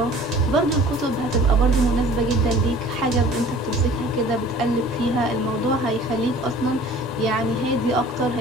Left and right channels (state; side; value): normal; both; correlation 0.47